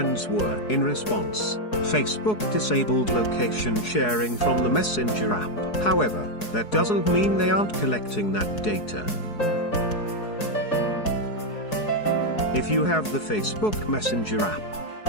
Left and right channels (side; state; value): right; late; 4.7 ms